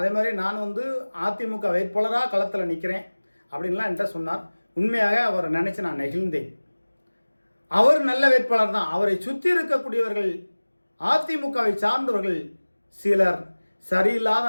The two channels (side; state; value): both; inverted; correlation -1.00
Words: மாதிரி நான் அதிமுக வேட்பாளராக களத்தில் நிற்கிறேன் அப்படின்லாம் என்கிட்ட சொன்னார். உண்மையாக அவரை நினச்சி நான் நெகிழ்ந்தேன். அவர் நல்ல வேட்பாளர் தான். அவரை சுற்றி இருக்கக்கூடியவர்கள், அதிமுகவை சார்ந்தவர்கள் சிலர்